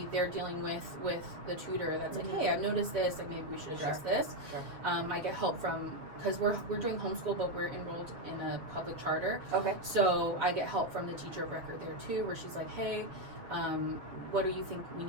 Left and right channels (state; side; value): late; left; 7.2 ms